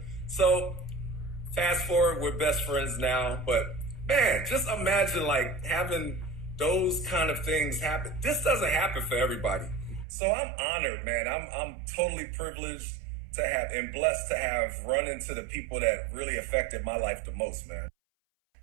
So fast forward, we're best friends now. But man, just imagine like having those kind of things happen. This doesn't happen for everybody. So I'm honored, man. I'm totally privileged to have and blessed to have run into the people that really affected my life the most, man.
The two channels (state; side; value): drops out; left; at 10.1 s